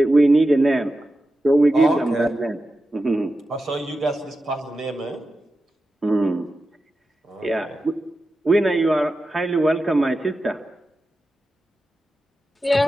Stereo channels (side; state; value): both; normal; correlation 0.92